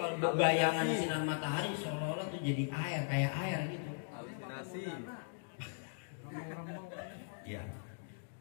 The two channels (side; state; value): right; silent; digital silence